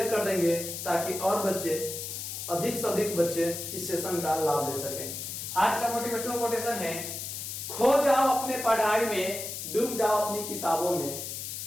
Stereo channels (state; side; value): noise; left; hiss, 6 dB below the sound